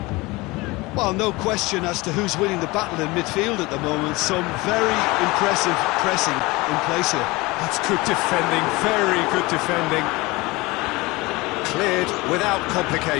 Well, no question as to who's winning the battle in midfield at the moment. Some very impressive pressing in place here. That's good defending, very good defending. Cleared without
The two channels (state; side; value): quieter; right; 22.5 dB